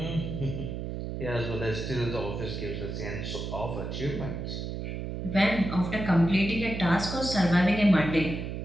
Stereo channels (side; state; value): right; noise; hum, 5 dB below the sound